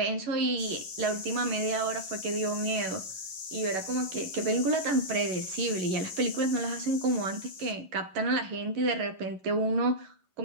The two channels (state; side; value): late; left; 11 ms